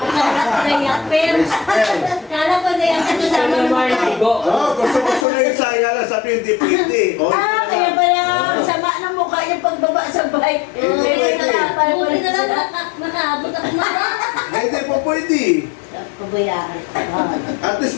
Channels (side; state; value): right; drops out; at 5.2 s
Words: Kaya Whisper. kala ko na yung Gusto kasama mo naman yung tigo. Gusto na Isa. Yala sabi hindi pwede. Oh, kaya pala sama ng mukha yung pagbaba sa bike. Hindi pwede. Buti na lang nakaabot ako na. Hindi po pwede. Pabayaan. At least